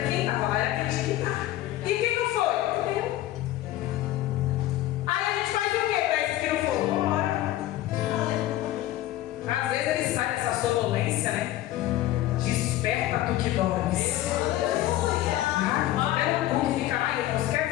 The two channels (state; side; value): quieter; right; 14.8 dB